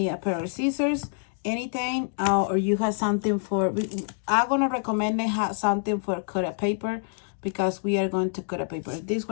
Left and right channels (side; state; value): right; silent; 60 dB below the other